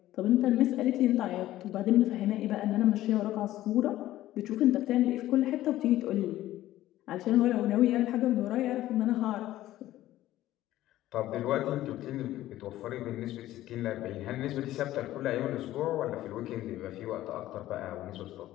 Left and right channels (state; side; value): quieter; right; 14.6 dB